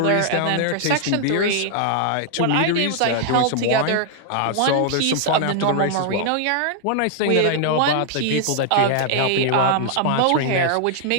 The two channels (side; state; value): both; different; correlation 0.00